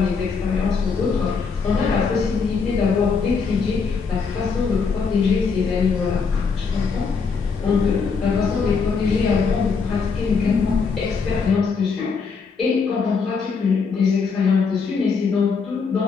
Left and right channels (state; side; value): quieter; right; 5.2 dB